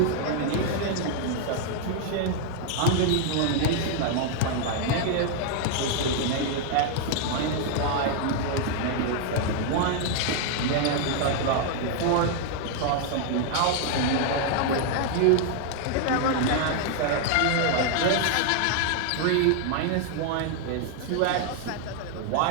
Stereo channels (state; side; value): different; both; correlation 0.00